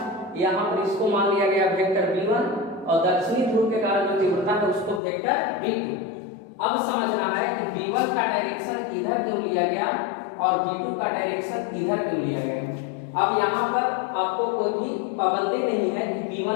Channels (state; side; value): drops out; right; at 5.0 s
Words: यहाँ पर इसको मान लिया गया वेक्टर v1 और दक्षिणी ध्रुव के कारण जो तीव्रता है उसको वेक्टर v2। अब समझना है कि v1 का डायरेक्शन इधर क्यों लिया गया और v2 का डायरेक्शन इधर क्यों लिया गया। अब यहाँ पर आपको कोई भी पाबंदी नहीं है कि